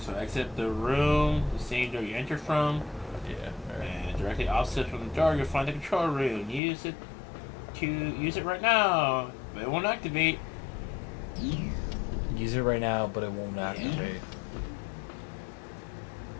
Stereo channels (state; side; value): drops out; right; at 6.6 s